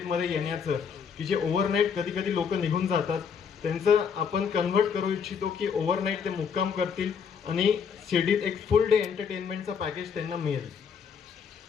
येण्याचं, की जे ओव्हरनाईट कधी कधी लोक निघून जातात, त्यांचं आपण कन्व्हर्ट करू इच्छितो की ओव्हरनाईट ते मुक्काम करतील आणि शिर्डीत एक फुल डे एंटरटेनमेंटचा पॅकेज त्यांना मिळेल.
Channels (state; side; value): quieter; right; 6.7 dB